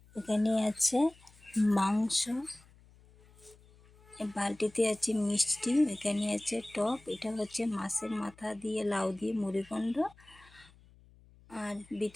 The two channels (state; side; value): noise; left; hum, 26 dB below the sound